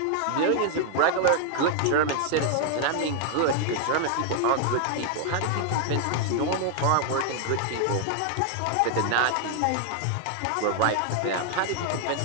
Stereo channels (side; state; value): both; different; correlation 0.00